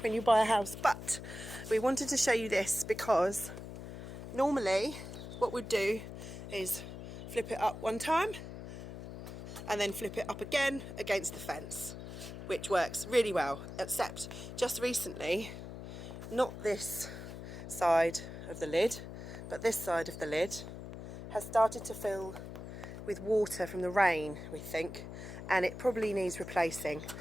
when you buy a house, but we wanted to show you this because normally what we'd do is flip it up one time and then flip it up again against the fence, which works really well, except just recently, not this side of the lid, but this side of the lid has started to fill with water from the rain, we think, and it probably needs replacing.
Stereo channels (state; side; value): noise; left; hum, 10 dB below the sound